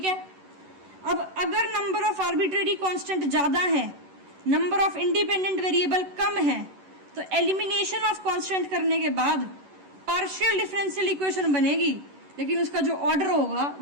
है, अब अगर नंबर ऑफ आर्बिट्रेरी कांस्टेंट ज्यादा है, नंबर ऑफ इंडिपेंडेंट वेरिएबल कम है, तो एलिमिनेशन ऑफ कांस्टेंट करने के बाद पार्शियल डिफरेंशियल इक्वेशन बनेगी, लेकिन उसका जो ऑर्डर होगा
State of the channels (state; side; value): late; left; 11 ms